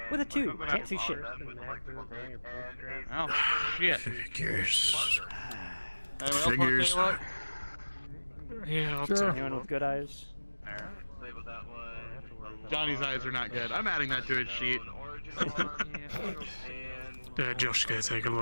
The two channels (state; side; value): inverted; both; correlation -1.00